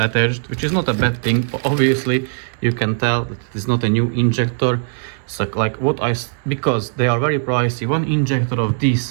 which is not a bad thing. Obviously you can tell that it is not a new injector. So like because they are very pricey, one injector of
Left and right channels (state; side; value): silent; left; digital silence